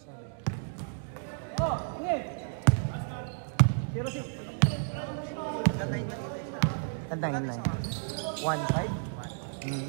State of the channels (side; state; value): left; silent; digital silence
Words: Sorry. Oh, okay. Zero six. Tantayin na. 1-5?